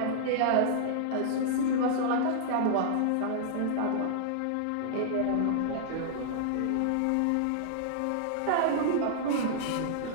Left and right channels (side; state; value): both; different; correlation -0.01